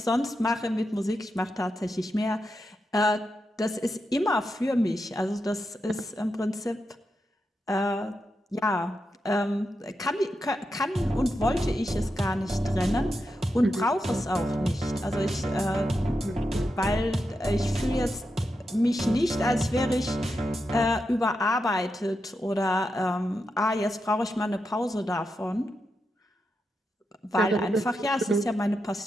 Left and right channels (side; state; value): both; normal; correlation 0.87